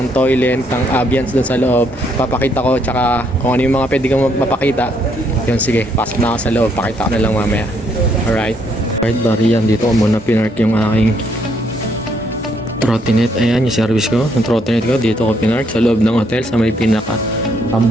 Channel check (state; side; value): normal; both; correlation 0.71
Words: toilet, ng ambience doon sa loob. Papakita ko, tsaka kung ano yung mga pwede kong mapakita. Yun, sige, pasok na ako sa loob, pakita ko na lang mamaya. Alright. Alright, bari yan. Dito ko muna pinark yung aking trottinette. Ayan, yung service ko. Yung trottinette ko, dito ko pinark sa loob ng hotel sa may